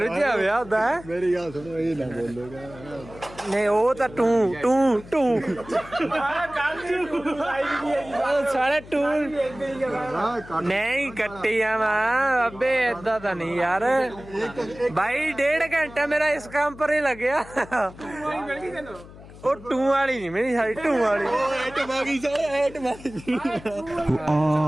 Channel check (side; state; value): left; noise; hum, 18 dB below the sound